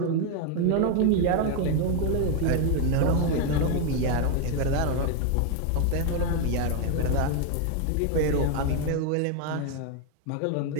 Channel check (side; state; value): both; different; correlation 0.01